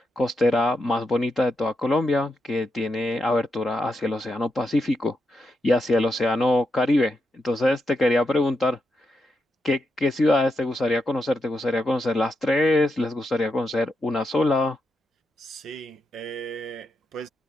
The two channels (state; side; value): normal; both; correlation 0.84